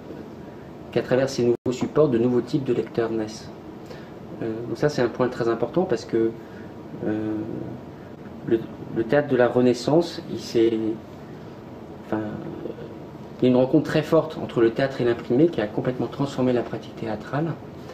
travers ces nouveaux supports, de nouveaux types de lecteurs naissent. Donc ça, c'est un point très important parce que le théâtre de la Renaissance, il y a une rencontre très forte entre le théâtre et l'imprimé qui a complètement transformé la pratique théâtrale,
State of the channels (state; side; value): identical; both; correlation 1.00